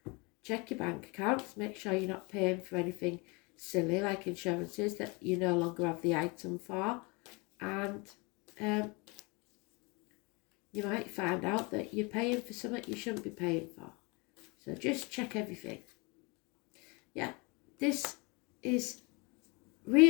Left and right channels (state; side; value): quieter; right; 28.5 dB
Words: Check your bank accounts, make sure you're not paying for anything silly like insurances that you no longer have the item for, and you might find out that you're paying for something you shouldn't be paying for. So just check everything. Yeah, this is